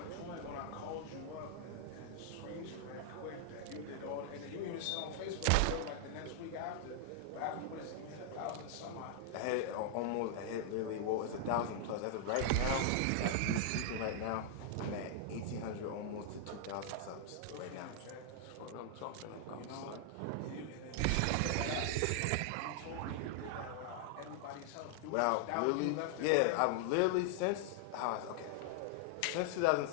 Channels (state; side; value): different; both; correlation 0.00